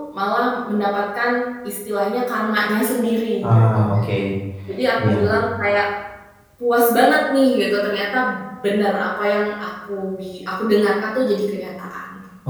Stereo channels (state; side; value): identical; both; correlation 1.00